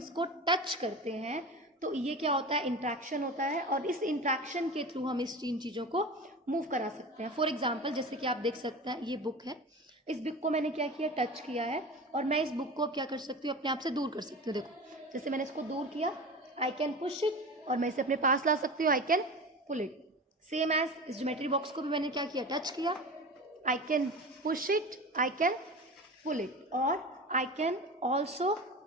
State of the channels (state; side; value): normal; both; correlation 0.31